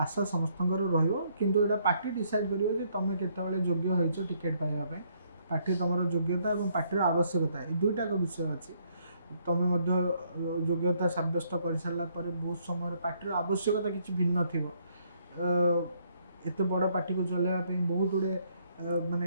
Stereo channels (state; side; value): inverted; both; correlation -0.69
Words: समस्त किंतु यहाँ पार्टी डिसाइड कर तुम केतबले योग्य हो टिकेट पाइबा पार्टी तुम योग्यता और पार्टी आवश्यकता ये दुईटा विषय अच्छी तुम योग्यता सब्यस्त कर सारापर बहुत समय पार्टी आवश्यकता किसी भिन्न थी एत बड़ पार्टी को चलवाई बहुत गुड़े